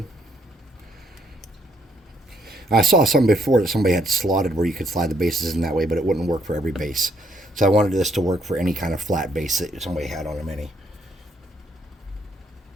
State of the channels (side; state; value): both; normal; correlation 0.71